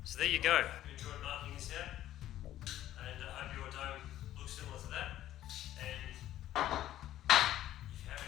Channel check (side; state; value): right; quieter; 13.1 dB